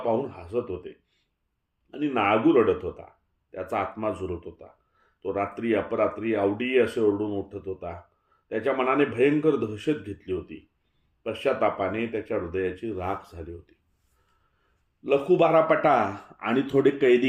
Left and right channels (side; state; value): both; identical; correlation 1.00